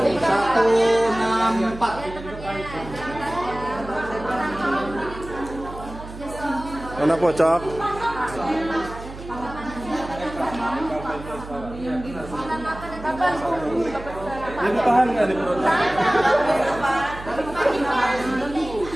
Mana kocok? Ini tahan nggak di perut?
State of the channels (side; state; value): right; noise; hum, 13 dB below the sound